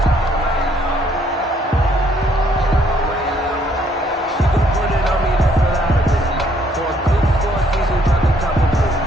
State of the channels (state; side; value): normal; both; correlation 0.67